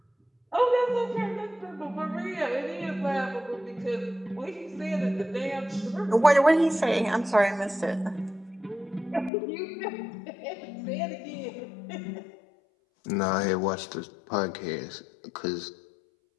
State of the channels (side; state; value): right; drops out; at 9.3 s